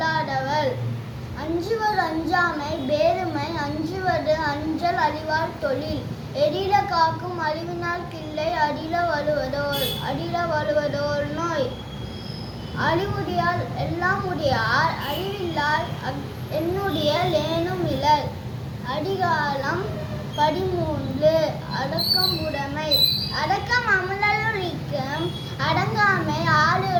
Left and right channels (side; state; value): both; identical; correlation 1.00